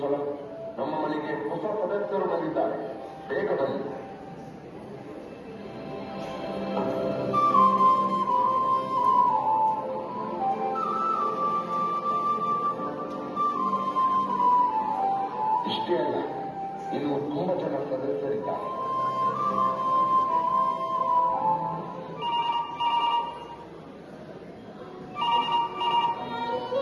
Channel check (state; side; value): identical; both; correlation 1.00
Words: ಸಲ ನಮ್ಮ ಮನೆಗೆ ಹೊಸ ಸದಸ್ಯರು ಬಂದಿದ್ದಾರೆ. ಬೇಗ ಬನ್ನಿ. ಇಷ್ಟೇ ಅಲ್ಲ, ಇನ್ನು ತುಂಬಾ ಜನ ಸದಸ್ಯರಿದ್ದಾರೆ.